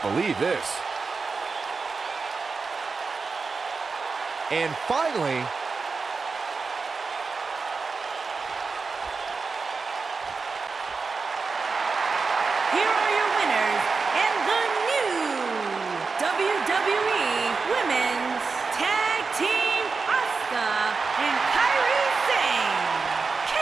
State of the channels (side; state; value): left; quieter; 4.6 dB